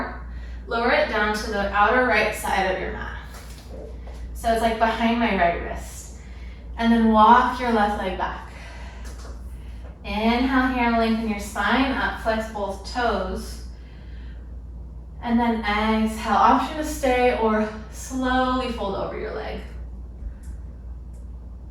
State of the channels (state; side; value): identical; both; correlation 1.00